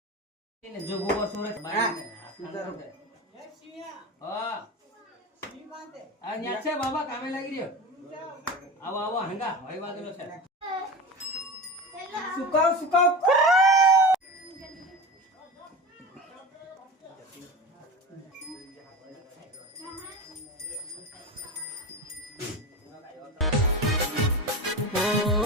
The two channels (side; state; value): both; normal; correlation 0.27